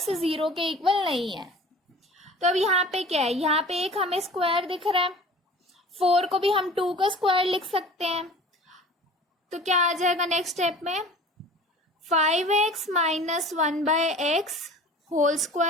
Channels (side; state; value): both; normal; correlation 0.43